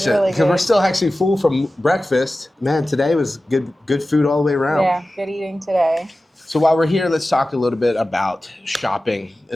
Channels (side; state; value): both; normal; correlation 0.95